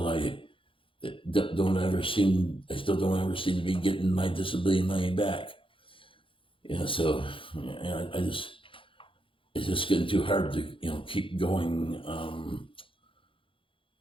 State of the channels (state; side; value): late; right; 0.25 ms